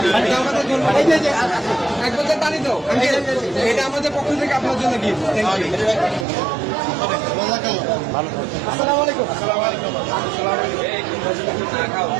এটা আমাদের জন্য। এক বোতল পানি দাও আঙ্কেল, এটা আমাদের পক্ষ থেকে আপনার জন্য গিফট। Thank you. আসসালামু আলাইকুম।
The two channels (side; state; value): left; drops out; at 6.2 s